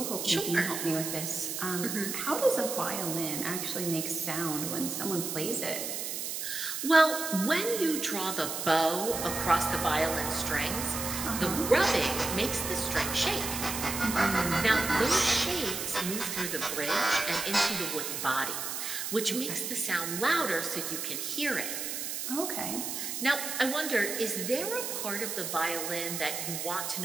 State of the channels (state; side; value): noise; right; hiss, 4 dB below the sound